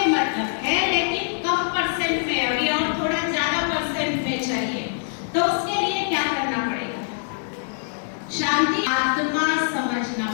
मतलब है, लेकिन कम परसेंट में अभी और थोड़ा ज्यादा परसेंट में चाहिए। तो उसके लिए क्या करना पड़ेगा? शांति आत्मा समझना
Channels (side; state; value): right; silent; digital silence